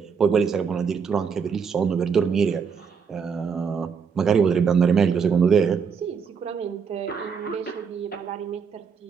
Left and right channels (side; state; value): left; quieter; 6.3 dB